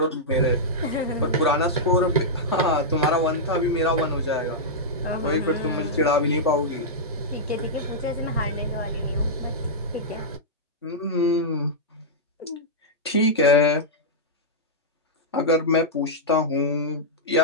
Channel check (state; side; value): normal; both; correlation -0.09